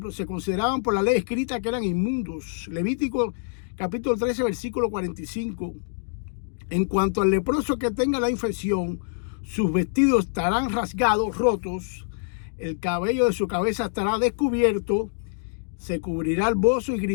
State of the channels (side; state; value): right; silent; digital silence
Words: se consideraban por la ley escrita que eran inmundos. Levítico capítulo 13, versículo 45. En cuanto al leproso que tenga la infección, sus vestidos estarán rasgados, rotos, el cabello de su cabeza estará descubierto, se cubrirá el bozo y